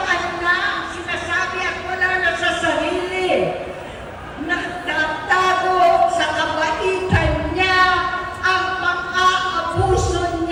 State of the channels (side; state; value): both; identical; correlation 1.00